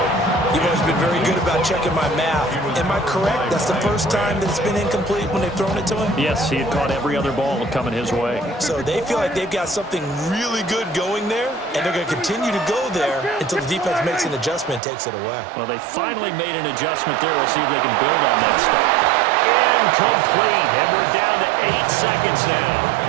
You've always been very good about checking my math. Am I correct? That's the first time that it's been incomplete when they've thrown it to him? Yes, he had caught every other ball coming his way. So they feel like they've got something really good going there, and they're going to continue to go there until the defense makes an adjustment and takes it away. Well, they finally made an adjustment there. We'll see if they can build on that stuff. Incomplete, and we're down to 8 seconds now.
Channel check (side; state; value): left; drops out; at 14.8 s